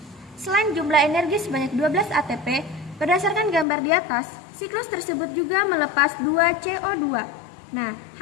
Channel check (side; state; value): right; drops out; at 3.7 s